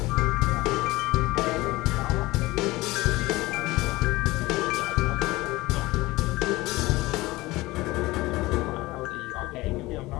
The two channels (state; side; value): quieter; right; 19.9 dB